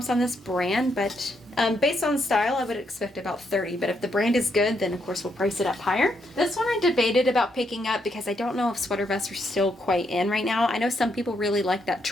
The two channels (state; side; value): normal; both; correlation 0.77